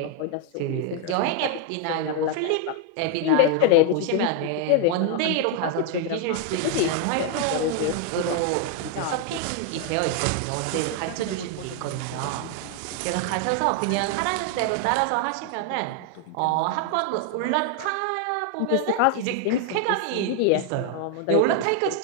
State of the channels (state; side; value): different; both; correlation 0.01